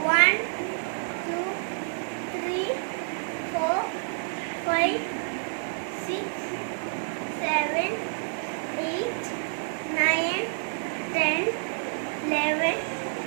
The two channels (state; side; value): silent; left; 59 dB below the other